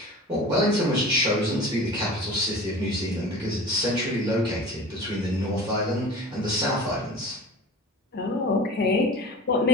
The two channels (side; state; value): both; normal; correlation 0.37